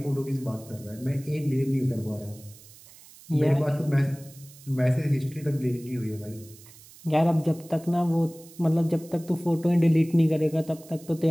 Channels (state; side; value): noise; right; hiss, 22 dB below the sound